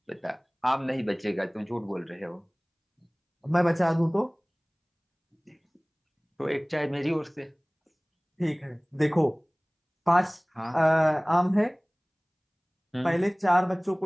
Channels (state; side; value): identical; both; correlation 1.00